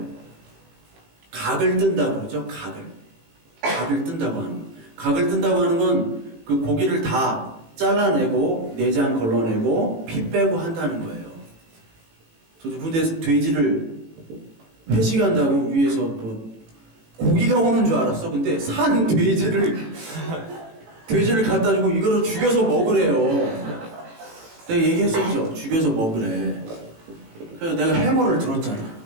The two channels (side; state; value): left; late; 18 ms